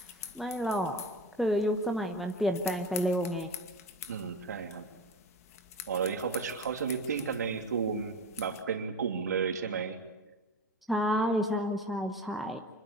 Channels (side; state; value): both; normal; correlation 0.29